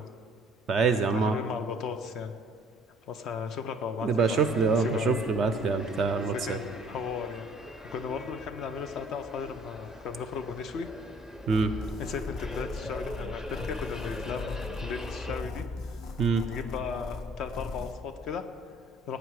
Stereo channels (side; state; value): both; normal; correlation 0.57